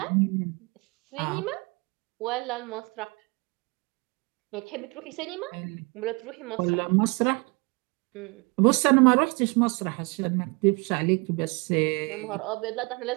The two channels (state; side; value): quieter; left; 29.4 dB